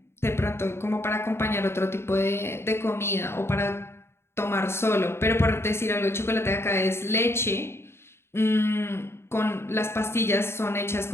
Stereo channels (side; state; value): right; late; 0.12 ms